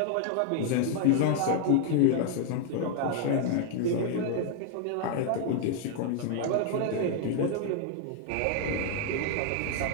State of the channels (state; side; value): different; both; correlation 0.00